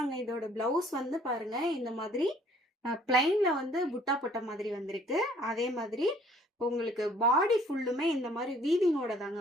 இதோட பிளவுஸ் வந்து பாருங்க. இந்த மாதிரி பிளைன்ல வந்து புட்டா போட்ட மாதிரி வந்திருக்கு. அதே மாதிரி உங்களுக்கு பாடி ஃபுல்லுமே இந்த மாதிரி வீவிங்கோட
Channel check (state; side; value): normal; both; correlation 0.58